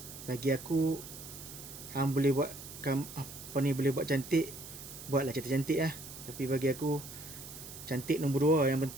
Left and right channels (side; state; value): right; noise; hiss, 13 dB below the sound